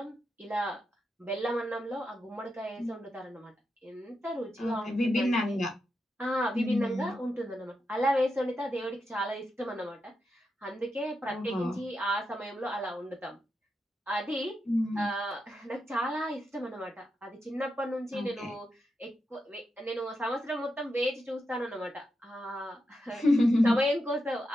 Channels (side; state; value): both; normal; correlation 0.86